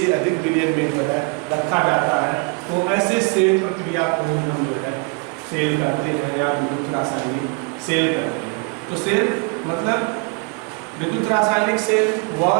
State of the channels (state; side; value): quieter; left; 31.6 dB